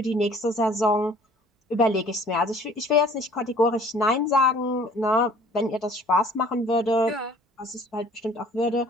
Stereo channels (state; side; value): normal; both; correlation 0.52